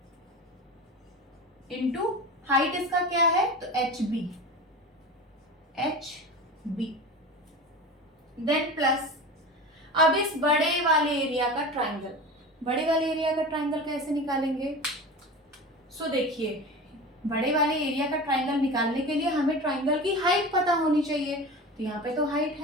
इंटू हाइट इसका क्या है? तो एच बी, देन प्लस अब इस बड़े वाले एरिया का ट्राइंगल कैसे निकालेंगे? सो देखिए, बड़े वाले एरिया का ट्राइंगल निकालने के लिए हमें ट्राइंगल की हाइट पता होनी चाहिए, तो यहाँ पे तो हाइट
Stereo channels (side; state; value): both; normal; correlation 0.30